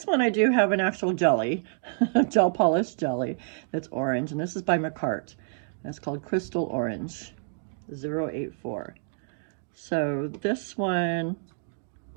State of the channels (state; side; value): silent; left; digital silence